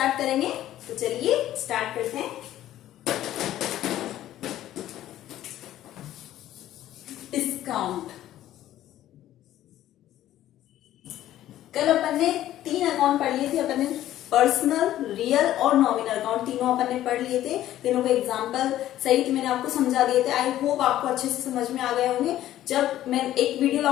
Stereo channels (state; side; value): quieter; right; 13.2 dB